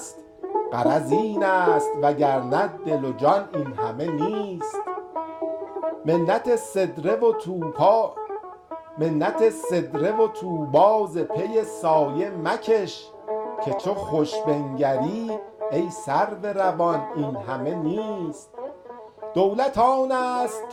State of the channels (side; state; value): both; identical; correlation 1.00